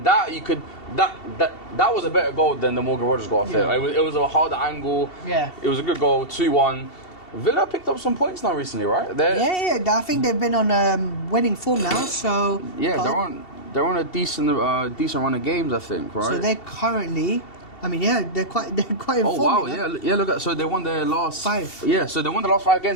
that you could that was a better goal than the Morgan Rogers goal. I think it was a harder angle. Yeah, it was a good goal. 2-1. Villa picked up some points now recently, right? Yeah. I think they've been on winning form now. So yeah, they're on a decent run of games, I think, right? So they're currently. I mean, yeah, they're quite in form. Oh wow, yeah. Look at so they won their last 5. Yeah, so they won the last 5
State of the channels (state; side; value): late; right; 2.7 ms